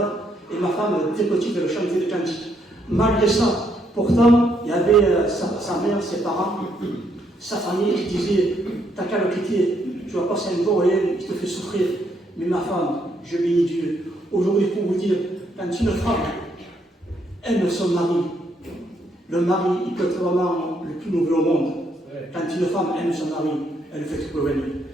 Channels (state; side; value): normal; both; correlation 0.74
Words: et ma femme, très petite, elle chantait des cantiques. Malgré ça, pourtant, il y avait sa mère, ses parents, sa famille qui disait, t'as qu'à le quitter, tu vas passer un beau rien qui te fait souffrir. Mais ma femme, je bénis Dieu. Aujourd'hui, pour vous dire, quand une femme aime son mari, le mari, il peut être vraiment le plus noble au monde. Quand une femme aime son mari, elle fait tout pour venir.